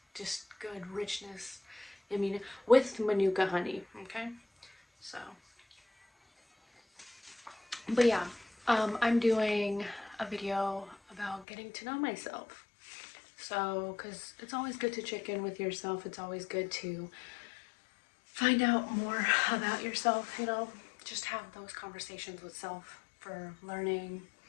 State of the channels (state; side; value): drops out; right; at 11.5 s